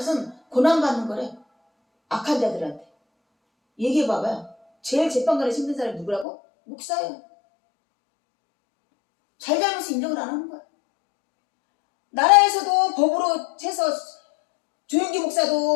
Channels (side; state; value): right; drops out; at 6.2 s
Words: 고난받는 거래. 악한 자들한테. 얘기해봐봐요. 제일 재판관에 힘든 사람이 누구라고? 목사예요. 잘잘못을 인정을 안 하는 거야. 나라에서도 법으로 해서 조영기